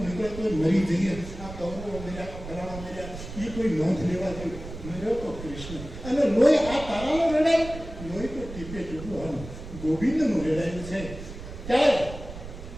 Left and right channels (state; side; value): noise; right; rumble, 11 dB below the sound